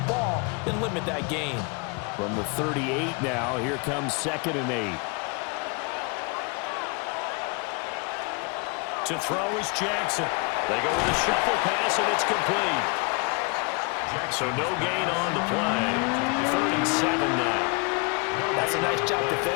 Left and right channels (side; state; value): right; quieter; 31.4 dB